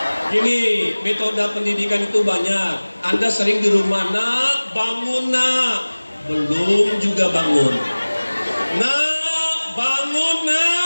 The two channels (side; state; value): both; inverted; correlation -1.00